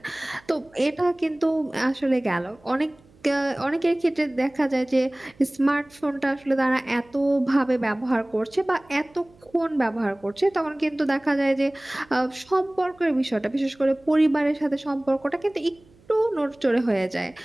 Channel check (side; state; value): right; noise; hum, 29 dB below the sound